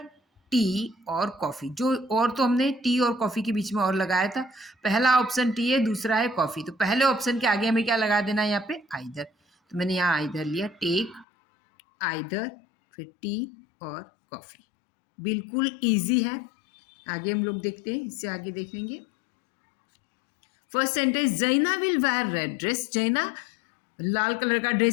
टी और कॉफी। जो और तो हमने टी और कॉफी के बीच में और लगाया था। पहला ऑप्शन टी है, दूसरा है कॉफी। तो पहले ऑप्शन के आगे हमें क्या लगा देना है? यहाँ पे आइदर। तो मैंने यहाँ आइदर लिया, टेक आइदर, फिर टी और कॉफी। बिल्कुल इजी है। आगे हम लोग देखते हैं, इससे आगे देखेंगे। फर्स्ट सेंटेंस, जैना विल वेयर रेड ड्रेस। जैना लाल कलर का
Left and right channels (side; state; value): right; drops out; at 11.2 s